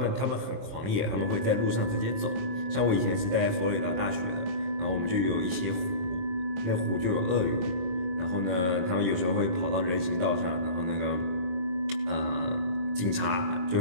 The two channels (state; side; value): late; left; 22 ms